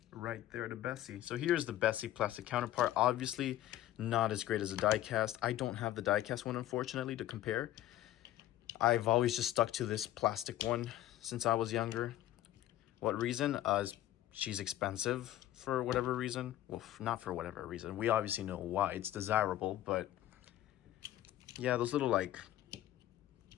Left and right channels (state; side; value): quieter; right; 13.7 dB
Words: right there to Bessie. So here's the Bessie plastic counterpart. Obviously not as great as a die cast. I don't have the die cast one, unfortunately, to compare. I've always just stuck to this plastic one since I was younger. What reason? She's expensive for whatever reason. Well, not for whatever reason. We obviously know why. It's desirable, but yeah, those little like